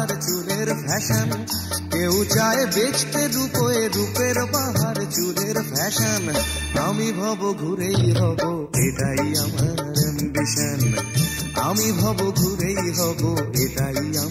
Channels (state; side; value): identical; both; correlation 1.00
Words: চুলের ফ্যাশন, কেউ চায় বেচতে রূপে রূপের বাহার চুলের ফ্যাশন। আমি ভব ঘুরেই হব, এটাই আমার অ্যাম্বিশন। আমি ভব ঘুরেই হব, এটাই